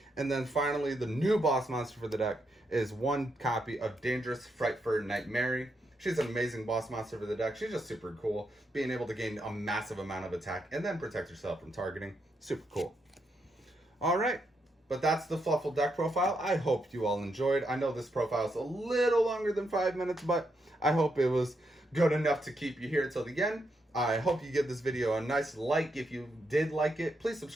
And then finally, the new boss monster for the deck is 1 copy of Dangerous Frightfur Nightmare. She's an amazing boss monster for the deck. She's just super cool. Being able to gain a massive amount of attack and then protect yourself from targeting. Super cool. Alright, but that's the Fluffal Deck Profile. I hope you all enjoyed. I know this profile is a little longer than 5 minutes, but I hope it was good enough to keep you here till the end. I hope you give this video a nice like if you did like it. Please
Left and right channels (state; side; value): normal; both; correlation 0.81